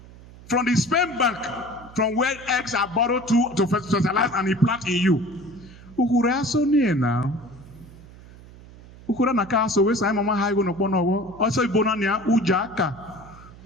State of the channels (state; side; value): noise; right; hum, 20 dB below the sound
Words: from the sperm bank, from where eggs are borrowed to fertilize and implant in you. Ukura so near now. Ukura na kaso we say mama haigo no bono also ibonania ujaka.